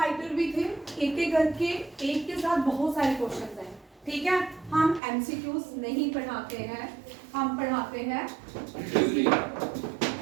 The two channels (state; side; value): drops out; left; at 5.0 s